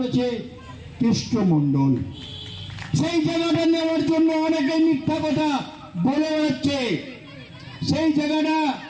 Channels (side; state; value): both; identical; correlation 1.00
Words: কৃষ্ণ মণ্ডল। সেই জায়গাটা নেওয়ার জন্য অনেকে মিথ্যা কথা বলে বেড়াচ্ছে, সেই জায়গাটা